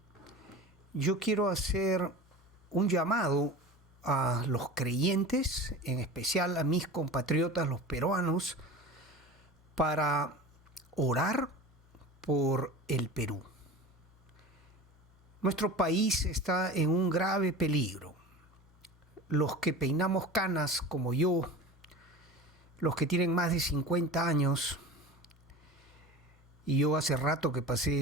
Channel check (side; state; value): both; normal; correlation 0.34